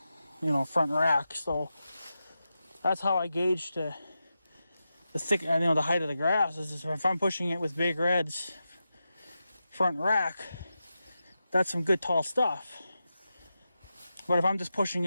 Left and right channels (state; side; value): inverted; both; correlation -0.90